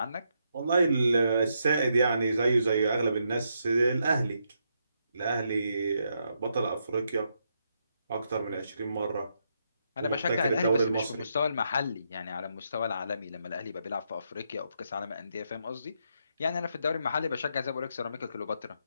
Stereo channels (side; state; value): both; inverted; correlation -0.80